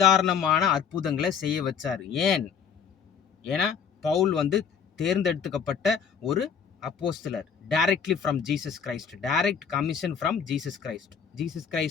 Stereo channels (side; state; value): right; quieter; 7.0 dB